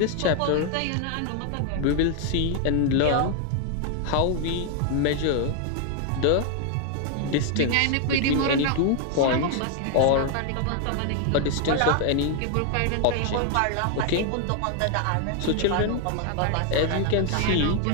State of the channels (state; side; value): different; both; correlation 0.00